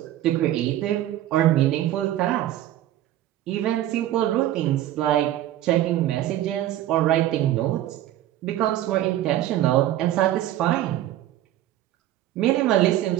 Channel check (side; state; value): left; quieter; 13.4 dB